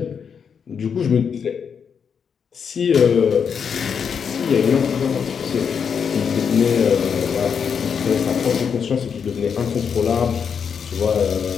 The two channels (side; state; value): right; quieter; 6.8 dB